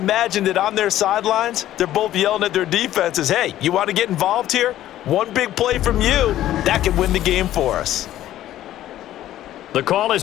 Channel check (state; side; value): quieter; right; 13.2 dB